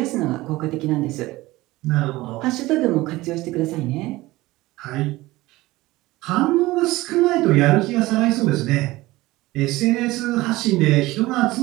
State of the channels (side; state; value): left; quieter; 19.0 dB